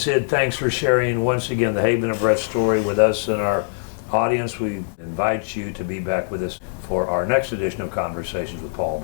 thanks for sharing once again the Haven of Rest story with us and our audience. We invite you to be back with us for our next edition of Conversations with Paul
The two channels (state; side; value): silent; right; digital silence